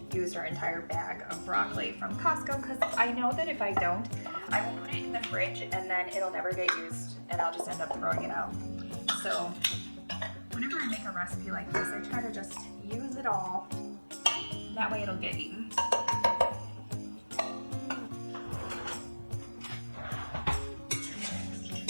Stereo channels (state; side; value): inverted; both; correlation -1.00